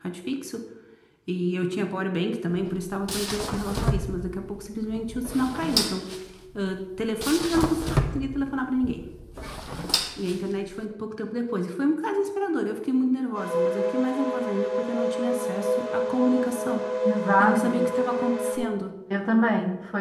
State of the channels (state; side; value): identical; both; correlation 1.00